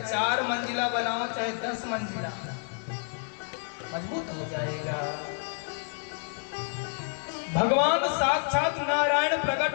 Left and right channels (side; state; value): right; silent; digital silence